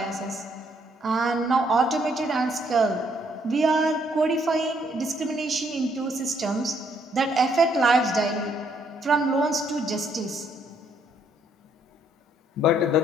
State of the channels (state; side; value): normal; both; correlation 0.69